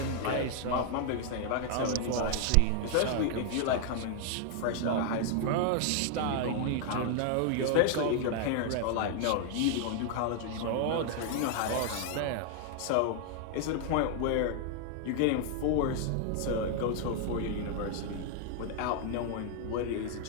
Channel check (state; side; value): different; both; correlation 0.00